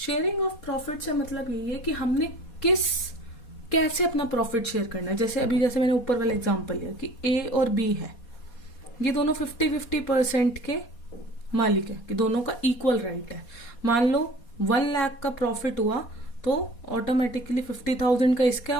of profit से मतलब यही है कि हमने कैसे अपना प्रॉफिट शेयर करना है. जैसे मैंने ऊपर वाला एग्जांपल लिया कि ए और बी है, ये दोनों 50-50% के मालिक है, कि दोनों का इक्वल राइट है. मान लो 1 लाख का प्रॉफिट हुआ तो ऑटोमेटिकली 50,000 का इसका है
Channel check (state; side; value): late; right; 4.2 ms